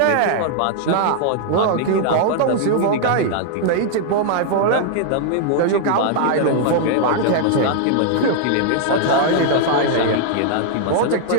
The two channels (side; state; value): both; different; correlation -0.01